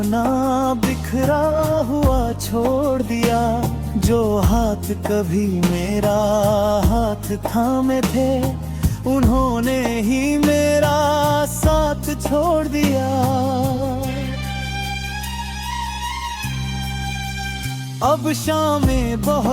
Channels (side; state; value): both; identical; correlation 1.00